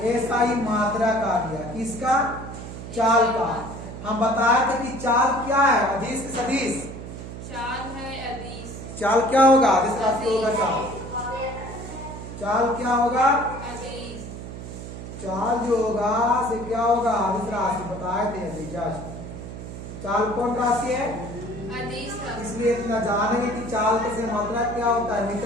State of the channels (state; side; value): noise; right; hum, 10 dB below the sound